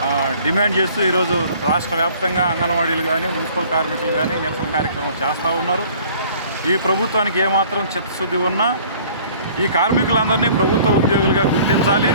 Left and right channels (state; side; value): inverted; both; correlation -0.53